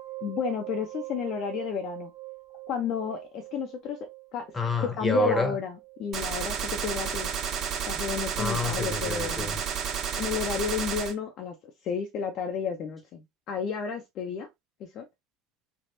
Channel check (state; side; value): normal; both; correlation 0.41